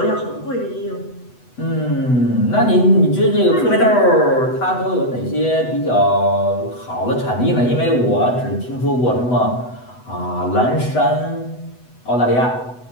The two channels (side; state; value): right; late; 8.0 ms